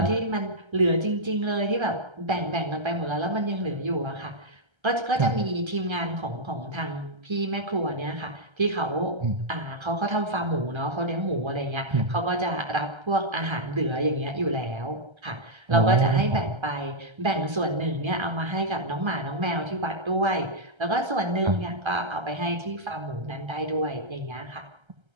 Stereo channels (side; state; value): left; late; 1.3 ms